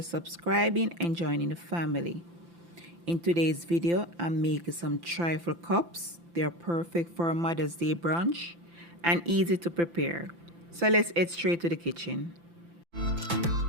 and joining the family. In today's video, I'm making some trifle cups. They're perfect for a Mother's Day brunch and easy to prepare. So let's head straight to the kitchen.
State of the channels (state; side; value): late; left; 5.9 ms